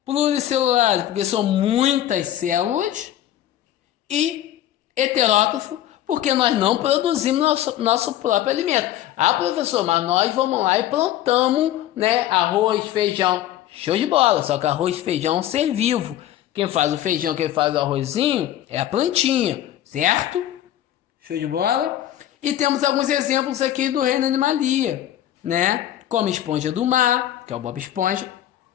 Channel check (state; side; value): quieter; right; 12.5 dB